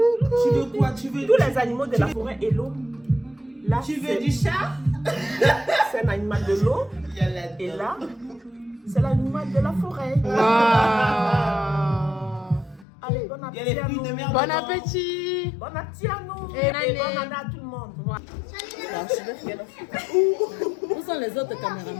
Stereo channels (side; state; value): right; drops out; at 12.9 s